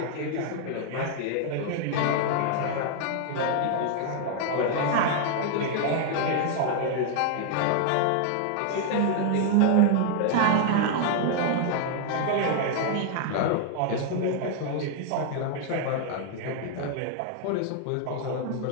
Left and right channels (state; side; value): different; both; correlation 0.00